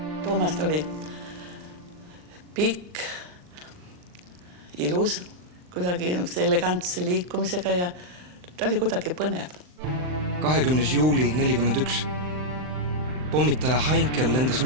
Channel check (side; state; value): left; late; 39 ms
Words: Toomast oli pikk, ilus, kuidagi elegantse liikumisega ja ta oli kuidagi põnev. 20. juuli 41. Pommitaja Heinkel lendas